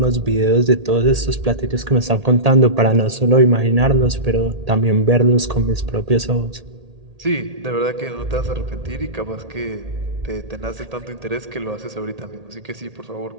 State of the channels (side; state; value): left; late; 1.8 ms